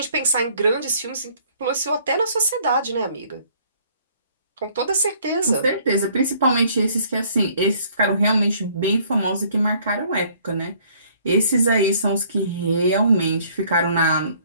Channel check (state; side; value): inverted; both; correlation -0.60